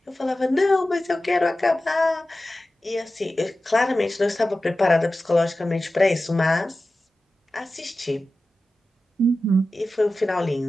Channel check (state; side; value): normal; both; correlation 0.94